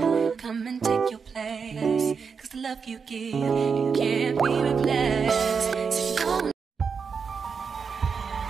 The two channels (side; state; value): left; quieter; 5.8 dB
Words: come and take your place. Cause the love you give, it can't be replaced. So don't.